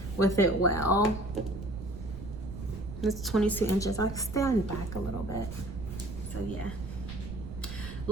with it well. It's 22 inches. I'll stand back a little bit. So yeah,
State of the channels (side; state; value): right; noise; rumble, 9 dB below the sound